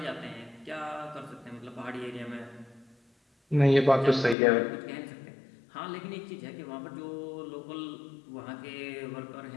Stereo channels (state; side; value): drops out; right; at 4.4 s